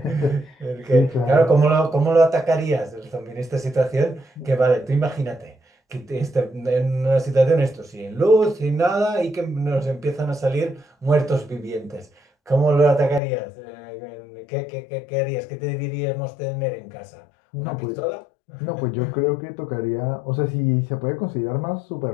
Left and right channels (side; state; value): right; drops out; at 13.2 s